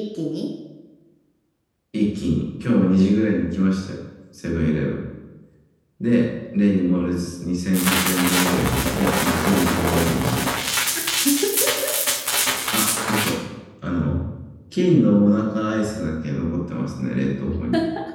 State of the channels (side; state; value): both; identical; correlation 1.00